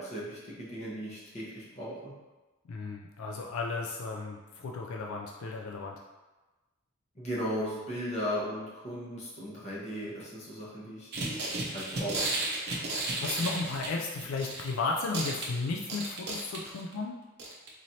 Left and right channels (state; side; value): normal; both; correlation 0.30